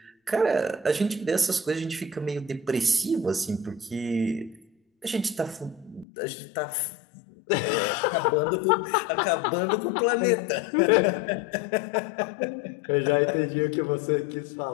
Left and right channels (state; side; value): drops out; right; at 6.1 s